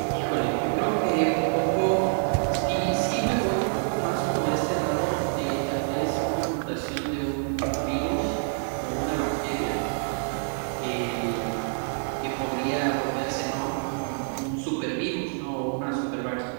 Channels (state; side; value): silent; left; digital silence